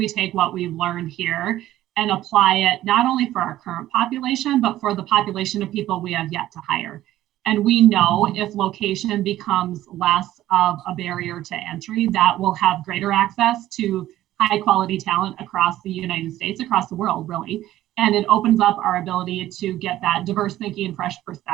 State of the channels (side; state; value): left; quieter; 14.2 dB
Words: take what we've learned here and apply it not only for our current population, but for the population of people we have yet to hire? And we know if location becomes less of a barrier to entry, that will have greater access to high quality talent across the United States, across the world, really. And it opens up our ability to get that diverse thinking and fresh